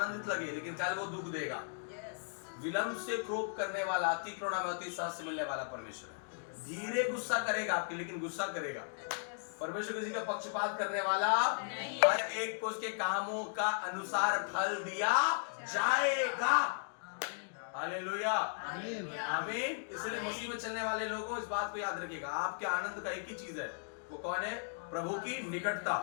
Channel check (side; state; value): right; silent; digital silence